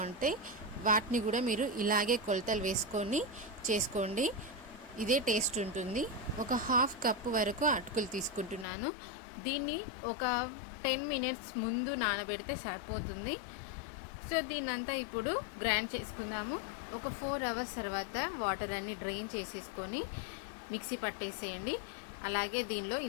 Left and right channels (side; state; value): right; drops out; at 8.7 s